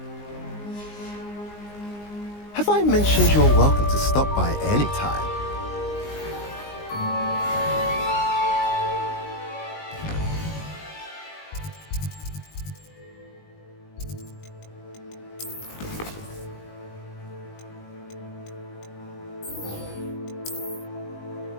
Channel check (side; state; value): right; late; 19 ms